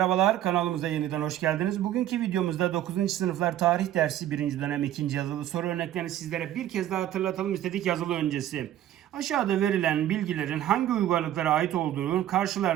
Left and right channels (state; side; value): quieter; left; 12.3 dB